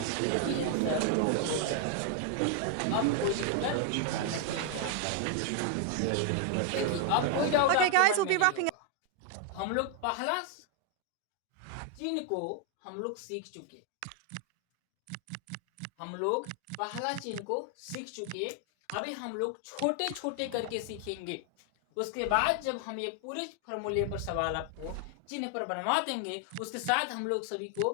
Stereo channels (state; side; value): different; both; correlation 0.00